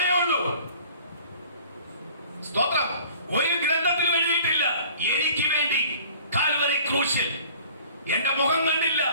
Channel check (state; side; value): inverted; both; correlation -0.49